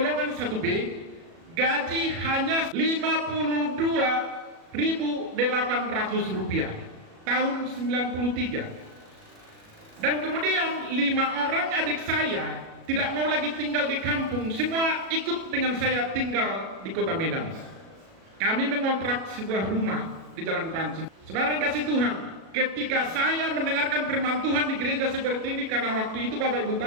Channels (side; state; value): left; late; 37 ms